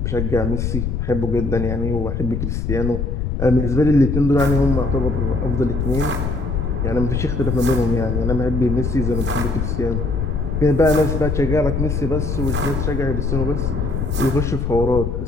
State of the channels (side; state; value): left; noise; rumble, 1 dB below the sound